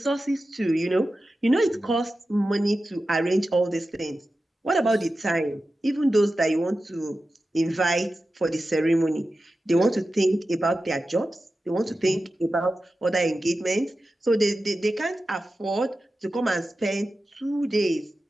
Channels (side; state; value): both; normal; correlation 0.93